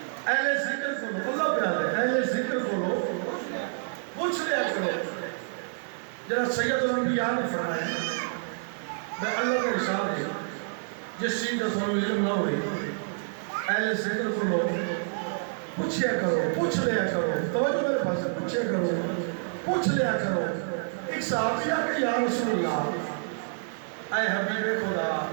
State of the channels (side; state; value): left; silent; digital silence